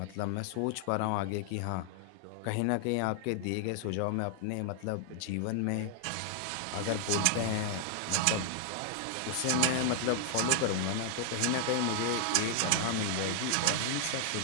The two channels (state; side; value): different; both; correlation 0.00